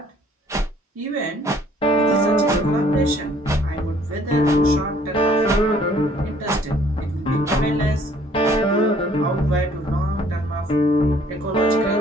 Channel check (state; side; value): normal; both; correlation 0.60